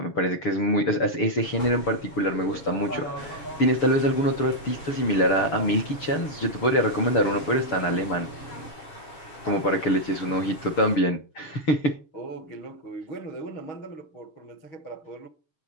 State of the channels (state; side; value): late; right; 6.8 ms